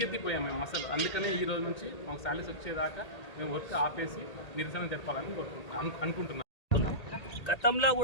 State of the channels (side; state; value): right; late; 1.8 ms